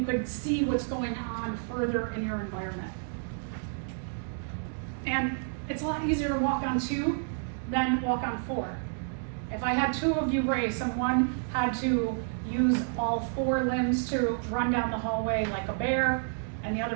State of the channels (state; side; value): silent; left; digital silence